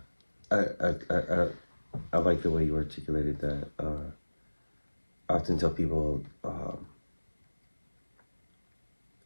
I like the way you articulated that. I often tell people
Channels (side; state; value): both; inverted; correlation -1.00